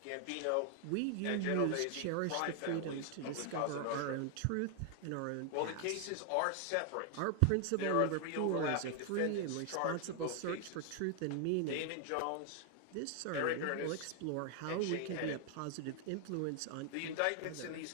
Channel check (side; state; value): both; different; correlation 0.00